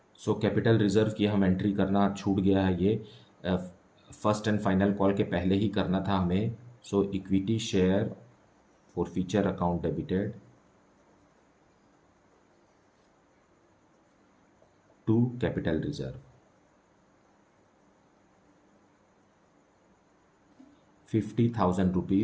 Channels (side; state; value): both; identical; correlation 1.00